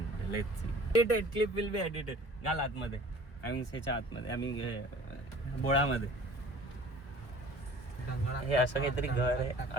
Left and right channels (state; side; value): late; right; 1.0 ms